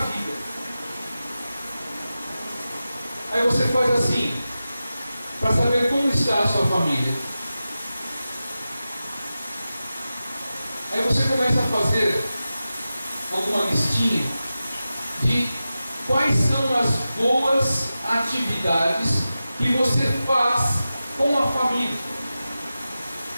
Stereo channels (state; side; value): inverted; both; correlation -0.93